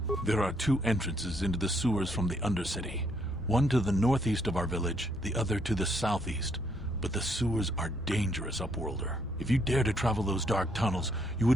There are two entrances into the sewers from the Undercity. One to the northeast of our village, the other to the southeast. But the sewers are dangerous, Upworlder. If you dare to travel those dark tunnels, you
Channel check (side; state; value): both; normal; correlation 0.71